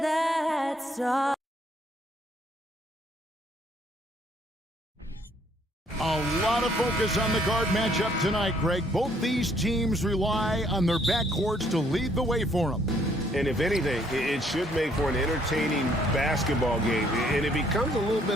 that stop? A lot of focus on the guard matchup tonight, Greg. Both these teams rely on their backcourts to lead the way for them. And if anything, it should make for an entertaining basketball game. And it becomes a little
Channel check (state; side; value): normal; both; correlation 0.66